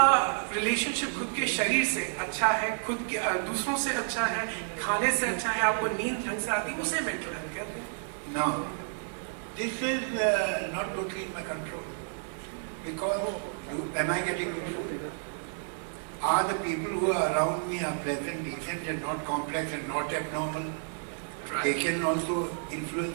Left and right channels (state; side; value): silent; left; digital silence